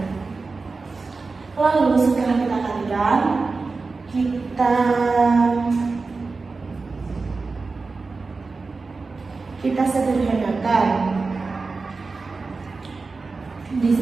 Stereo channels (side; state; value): left; quieter; 4.1 dB